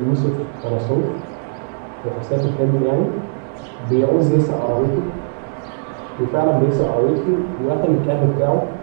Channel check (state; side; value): quieter; left; 37.0 dB